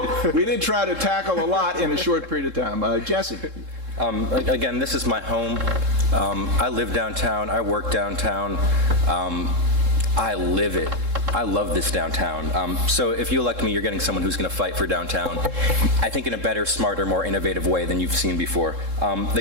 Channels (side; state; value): left; late; 3.7 ms